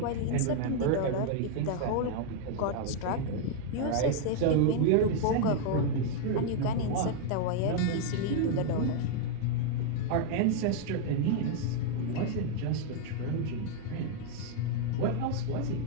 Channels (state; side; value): different; both; correlation 0.00